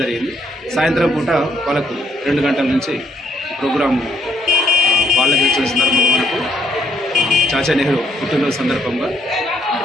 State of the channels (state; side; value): normal; both; correlation 0.68